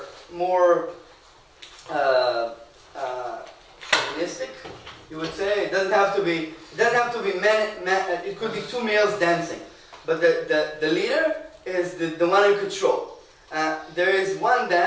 more chauvinistic, you would say. It doesn't have to be men, it could be two males dancing. But the leader is the one in control. There is one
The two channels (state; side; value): identical; both; correlation 1.00